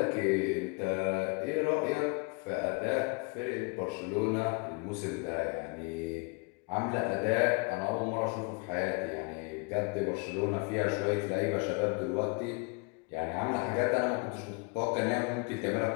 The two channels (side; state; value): right; quieter; 31.8 dB